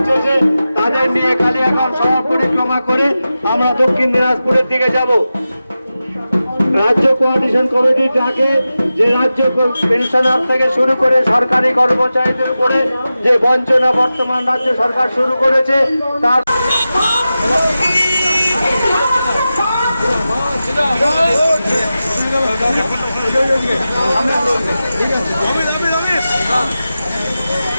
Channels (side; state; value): both; inverted; correlation -0.93